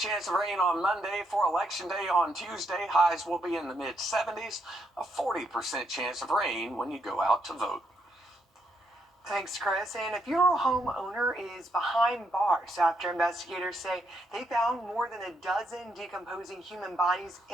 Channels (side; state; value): both; normal; correlation 0.77